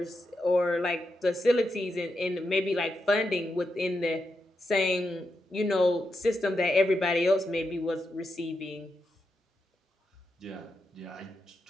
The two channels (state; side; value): normal; both; correlation 0.86